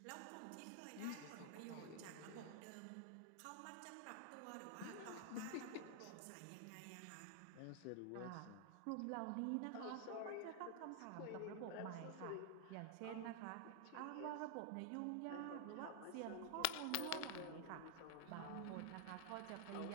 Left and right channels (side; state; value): both; different; correlation 0.00